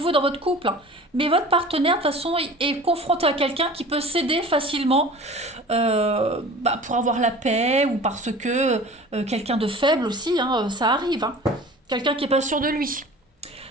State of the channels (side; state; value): both; normal; correlation 0.41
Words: dans votre couple, hein, mais votre partenaire, de toute façon, est confronté à quelqu'un qui peut céder facilement pour avoir la paix ou parce que quelqu'un de faible aussi, hein, ça arrive. Hein. Quelqu'un qui n'est pas sûr de lui.